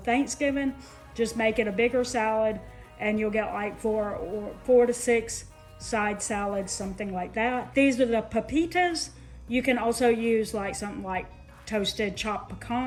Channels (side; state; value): both; identical; correlation 1.00